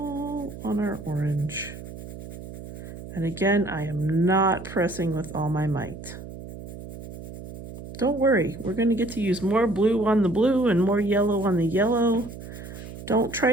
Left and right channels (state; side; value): noise; right; hum, 12 dB below the sound